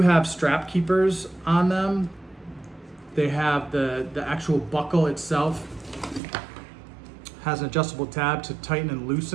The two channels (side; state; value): left; drops out; at 6.2 s